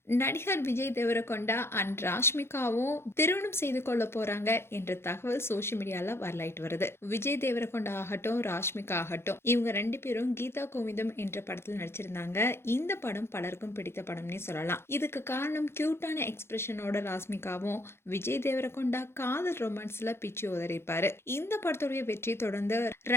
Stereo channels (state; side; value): late; right; 0.12 ms